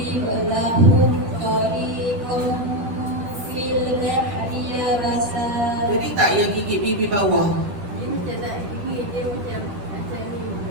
Jadi tak yang gigit bibir bawah.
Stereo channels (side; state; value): left; late; 10 ms